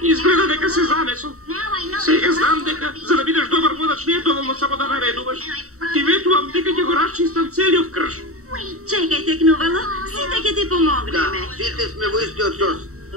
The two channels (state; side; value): late; left; 0.64 ms